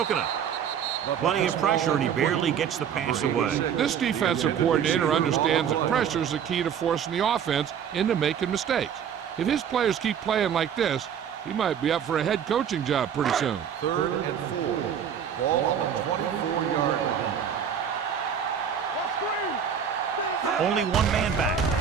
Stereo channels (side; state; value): left; quieter; 8.2 dB